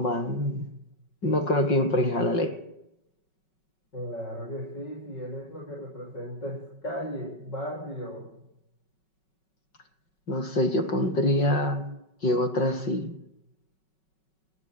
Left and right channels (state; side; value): late; right; 5.4 ms